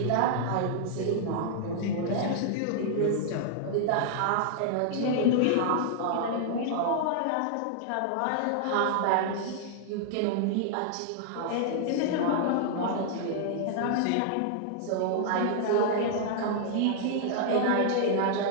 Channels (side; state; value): both; different; correlation -0.01